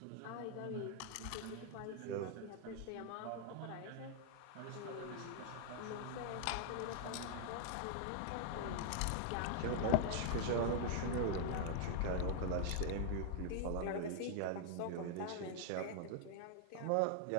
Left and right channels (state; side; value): different; both; correlation 0.00